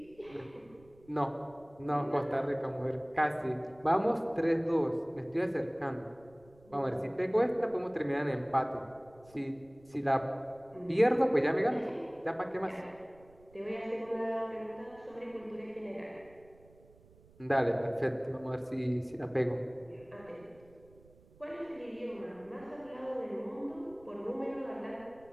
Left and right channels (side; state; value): right; noise; rumble, 26 dB below the sound